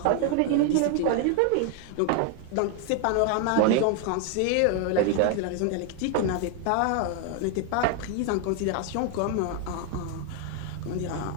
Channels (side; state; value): both; different; correlation 0.01